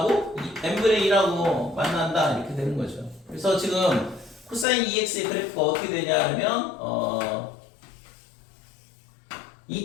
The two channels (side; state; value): right; drops out; at 4.7 s